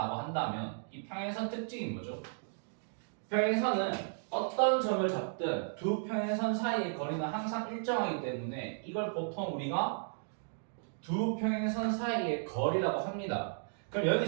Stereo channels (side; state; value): left; silent; digital silence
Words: 한다면 이 평행선 특징이 뭐죠? 평행선은 어떤 점을 잡든 두 평행선 사이의 거리는 항상 일정하기 때문에 이걸 보통 우리가 두 평행선 사이의 거리라고 합니다. 그럼